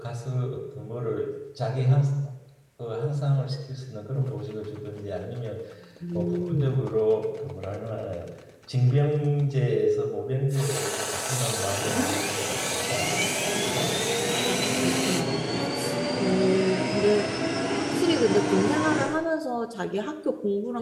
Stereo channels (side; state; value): both; identical; correlation 1.00